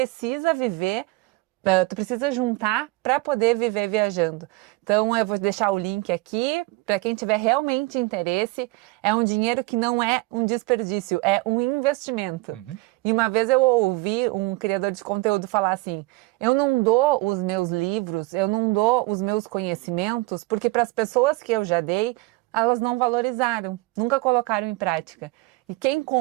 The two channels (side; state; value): left; quieter; 22.1 dB